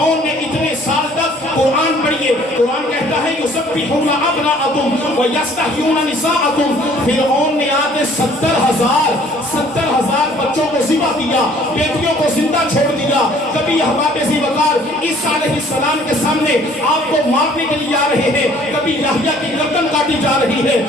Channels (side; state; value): both; normal; correlation 0.56